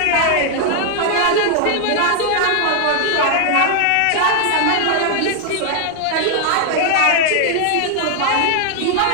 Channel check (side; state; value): both; different; correlation 0.00